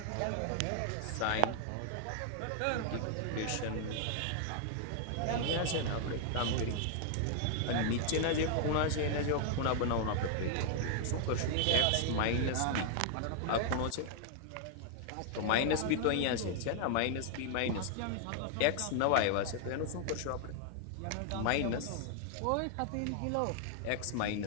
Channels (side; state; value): both; different; correlation 0.00